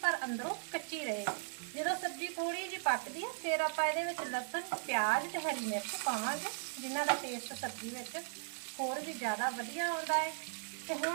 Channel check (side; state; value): left; silent; 53 dB below the other